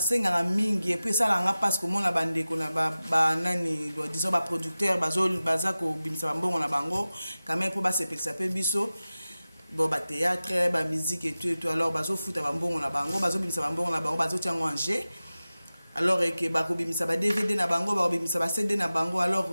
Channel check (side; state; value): both; inverted; correlation -0.96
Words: mingi et puis ça la nga parce que mon la bande ko na ba nani disons ba producteur baza ko bimisa mbongo na bango quand même pour ba sepelisa pe biso bon ba théâtre ba musique et tout alors bazo futa ba mbongo na bango bazo bimisa ba mbongo na bango bazo tiango en jeu alors que ba ko bimisa ba DVD na bango ba bimisa ba CD na bango alors